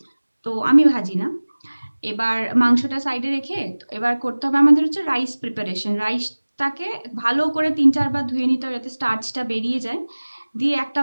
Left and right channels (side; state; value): both; inverted; correlation -1.00